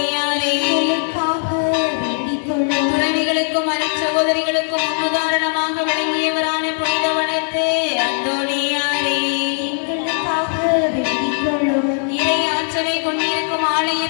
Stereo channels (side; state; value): right; silent; 56 dB below the other